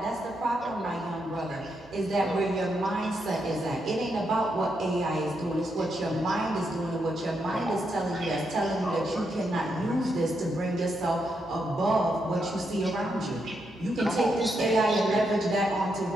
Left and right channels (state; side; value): normal; both; correlation 0.81